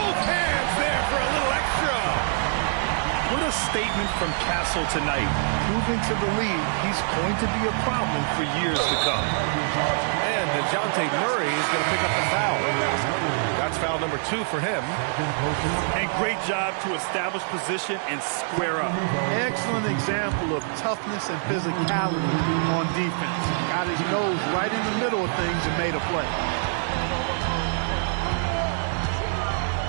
hands there for a little extra. What a statement from Castle tonight, proving to the league he's going to be a problem for years to come. And DeJounte Murray is going to pick up the foul. That's foul number 2 for him. And great job to establish position and square up. Excellent example of toughness and physicality on defense. Got his nose right in the middle of things and made a play.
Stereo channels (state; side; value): silent; left; digital silence